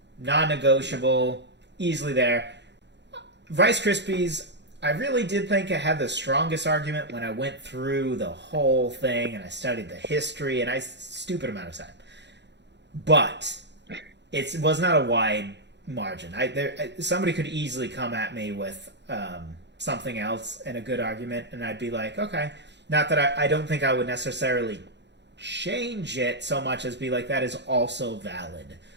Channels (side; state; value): left; late; 0.51 ms